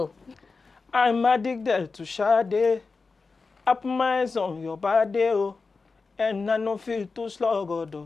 I'm addicted to Sade. I put my eyes on your body, oh, and I don't feel too sluggo,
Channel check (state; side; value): quieter; right; 4.3 dB